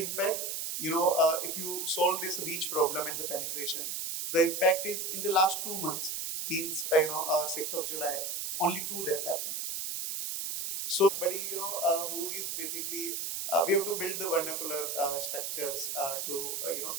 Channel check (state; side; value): noise; right; hiss, 3 dB below the sound